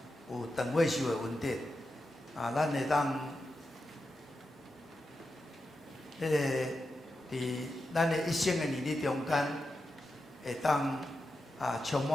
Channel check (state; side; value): normal; both; correlation 0.89